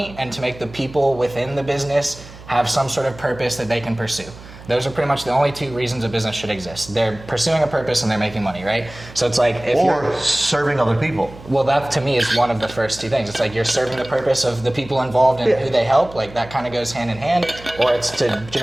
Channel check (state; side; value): noise; right; hum, 18 dB below the sound